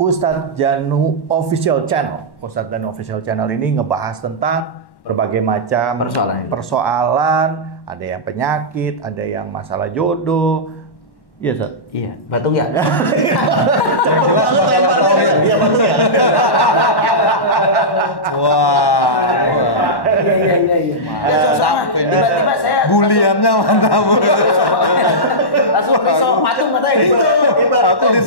Janu Official Channel. Ustadz Janu Official Channel ini ngebahas tentang berbagai macam persoalan. Ada yang penyakit, ada yang masalah jodoh. Iya, Ustaz. Iya, batung ya. Yang jelas masalah tauhid. Iya, batung ya. Wah. Iya. Mantap ini. Tiba-tiba saya Buliannya mantap. langsung pisau patung matanya. Aku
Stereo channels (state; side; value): late; right; 1.1 ms